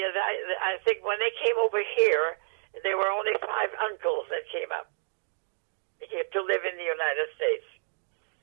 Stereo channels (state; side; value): silent; left; digital silence